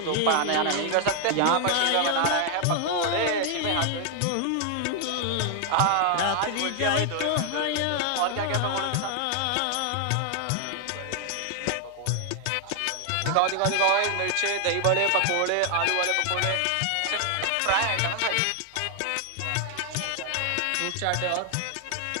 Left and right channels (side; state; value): both; different; correlation 0.00